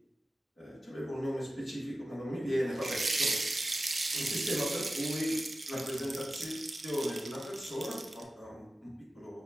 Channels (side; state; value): both; normal; correlation 0.94